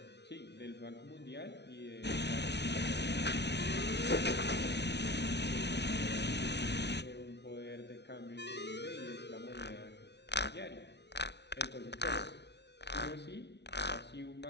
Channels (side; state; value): right; late; 0.50 ms